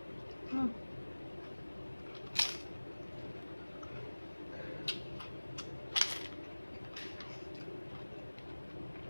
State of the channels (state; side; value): inverted; both; correlation -1.00